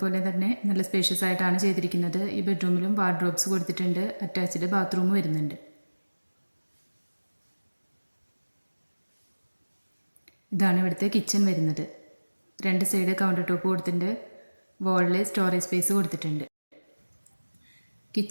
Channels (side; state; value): both; inverted; correlation -1.00